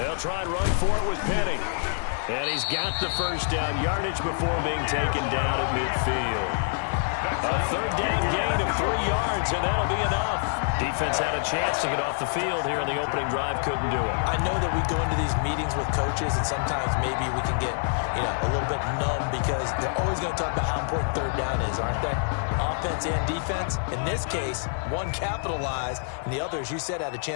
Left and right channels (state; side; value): silent; right; 61 dB below the other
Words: try and run for it with Penny. And he's got the first down yardage before being taken down at midfield. A third down gain of 3 yards, and that'll be enough. Defense had a chance to get off the field here in the opening drive, couldn't do it. I know that we go into these meetings with coaches, and sometimes maybe we can get, a little bit numb because they're always going to talk about how important third down is, aren't they? Offense and defense. In this case, one capitalized, and the other, as you said, had a